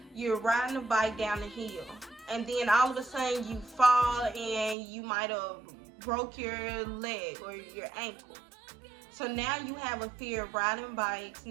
you're riding a bike down the hill, and then all of a sudden you fall and you might have broke your leg or your ankle. So now you have a fear of riding bikes.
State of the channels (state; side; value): drops out; left; at 4.8 s